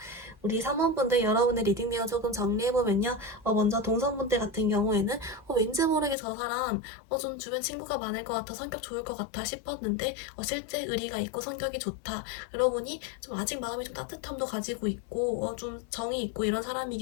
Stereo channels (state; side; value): drops out; right; at 6.2 s